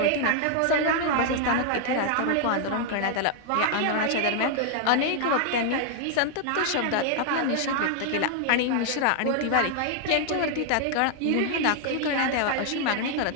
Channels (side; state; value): both; different; correlation 0.00